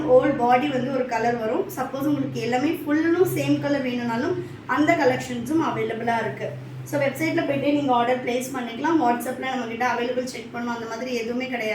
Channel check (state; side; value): identical; both; correlation 1.00